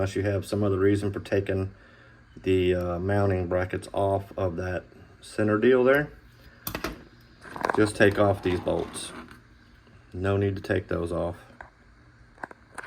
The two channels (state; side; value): identical; both; correlation 1.00